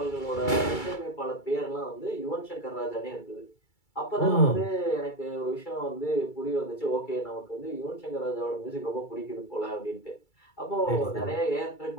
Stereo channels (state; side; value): late; right; 2.3 ms